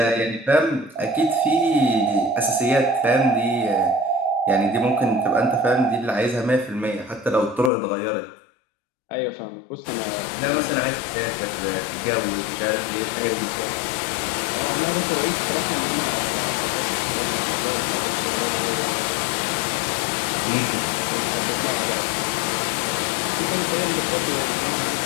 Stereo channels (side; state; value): right; drops out; at 7.7 s